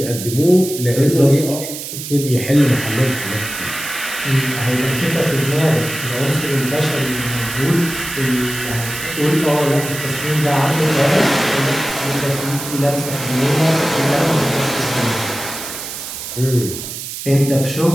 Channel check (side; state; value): right; noise; hiss, 8 dB below the sound